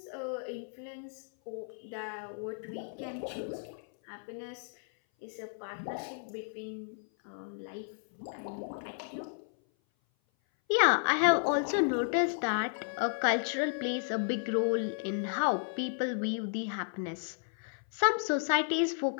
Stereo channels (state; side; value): silent; right; 56 dB below the other